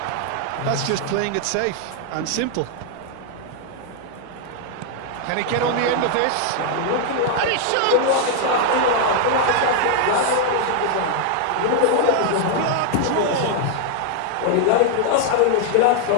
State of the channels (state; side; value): different; both; correlation 0.00